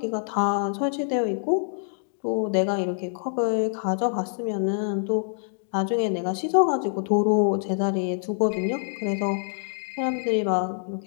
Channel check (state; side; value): silent; right; digital silence